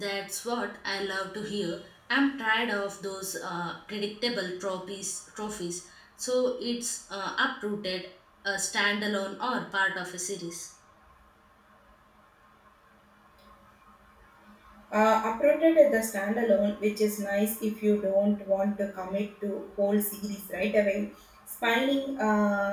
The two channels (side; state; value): both; identical; correlation 1.00